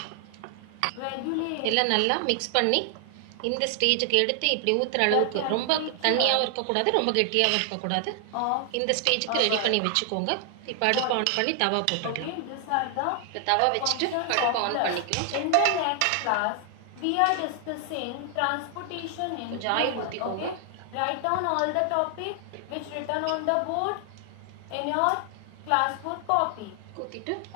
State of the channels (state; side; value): different; both; correlation 0.00